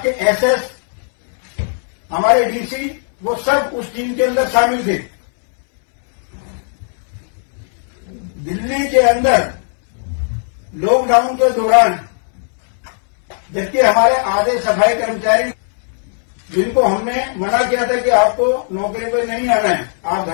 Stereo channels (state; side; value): silent; right; 66 dB below the other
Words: के एसएस, हमारे डीसी, वो सब उस टीम के अंदर शामिल थे। दिल्ली के अंदर लॉकडाउन के दौरान जबकि हमारे आधे सफाई कर्मचारी जिनको हमने मना किया था कि आपको नौकरी पर नहीं आना है, आप